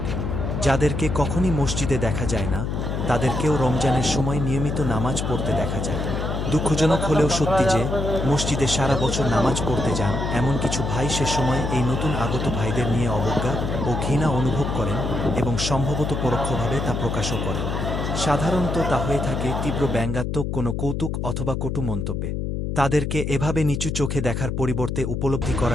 যাদেরকে কখনই মসজিদে দেখা যায় না, তাদেরকেও রমজানের সময় নিয়মিত নামাজ পড়তে দেখা যায়। দুঃখজনক হলেও সত্যি যে, মসজিদে সারা বছর নামাজ পড়তে যান এমন কিছু ভাই সে সময় এই নতুন আগত ভাইদের নিয়ে অবজ্ঞা ও ঘৃণা অনুভব করেন এবং সম্ভবত পরোক্ষভাবে তা প্রকাশও করেন। সাধারণত তা হয়ে থাকে তীব্র ব্যঙ্গাত্মক কোনো কৌতুক অথবা কটু মন্তব্যে। তাদেরকে এভাবে নিচু চোখে দেখার পরিবর্তে উপলব্ধি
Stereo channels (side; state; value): left; noise; hum, 2 dB below the sound